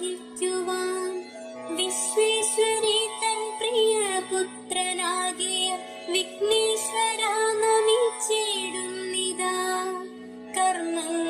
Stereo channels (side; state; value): both; identical; correlation 1.00